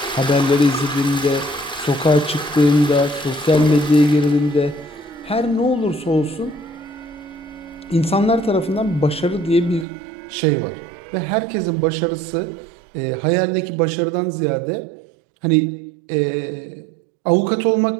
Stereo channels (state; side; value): drops out; left; at 9.9 s